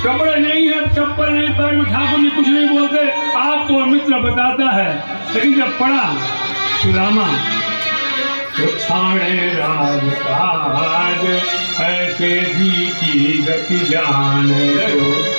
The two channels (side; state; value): both; inverted; correlation -1.00